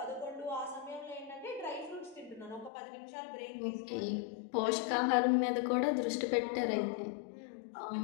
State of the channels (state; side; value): drops out; right; at 2.7 s